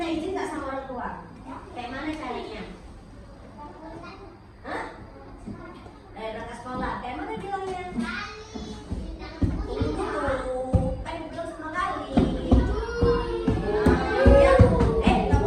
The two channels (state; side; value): identical; both; correlation 1.00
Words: izin nggak sama orang tua? Kayak mana caranya? Hah? Berangkat sekolah. Kayak mana bilangnya? Tunggu dulu. Kan belum sama Gali. Ya, nggak